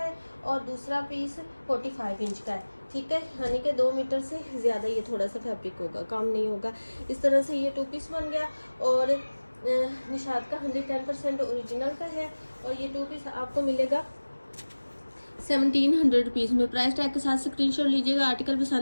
और दूसरा पीस 45 इंच का है, ठीक है। यानी कि 2 मीटर से ज़्यादा ये थोड़ा सा फैब्रिक होगा, काम नहीं होगा। इस तरह से ये 2 पीस बन गया और निशात का 110% ओरिजिनल का है और ये 2 पीस आपको मिलेगा 1700 रुपीज़ में। प्राइस टैग के साथ स्क्रीनशॉट लीजिएगा। आर्टिकल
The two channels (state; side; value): inverted; both; correlation -1.00